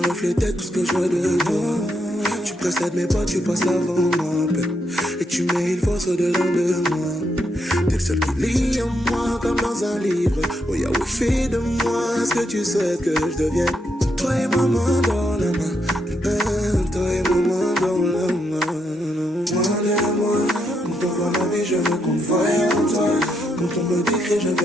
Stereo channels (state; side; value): normal; both; correlation 0.79